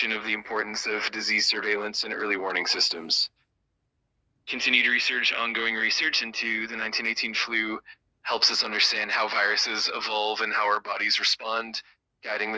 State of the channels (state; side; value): identical; both; correlation 1.00